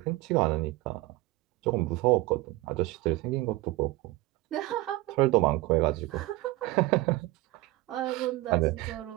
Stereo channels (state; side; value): quieter; left; 19.2 dB